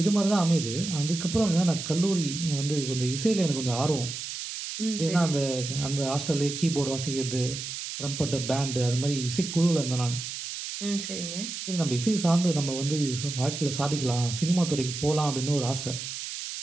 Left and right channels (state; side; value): noise; right; hiss, 7 dB below the sound